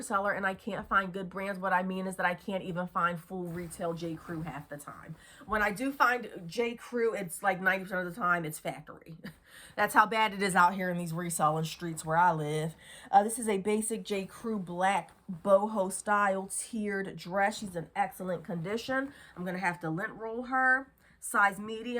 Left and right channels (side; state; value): both; identical; correlation 1.00